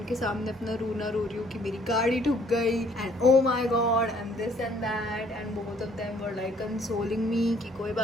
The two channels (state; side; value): normal; both; correlation 0.61